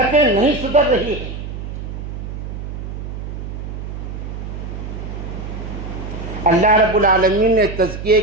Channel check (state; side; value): noise; right; hum, 7 dB below the sound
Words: نہیں سدھر رہی ہیں۔ اللہ رب العالمین نے تزکیے